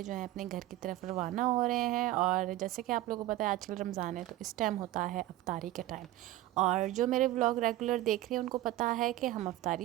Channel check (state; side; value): quieter; left; 15.4 dB